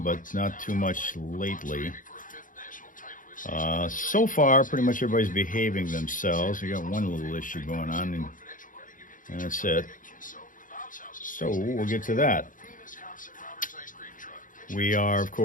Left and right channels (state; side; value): late; right; 0.39 ms